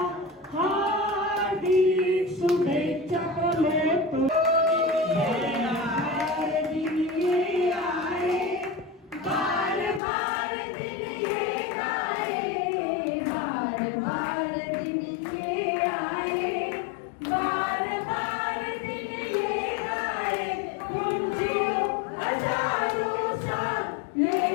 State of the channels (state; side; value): drops out; right; at 10.0 s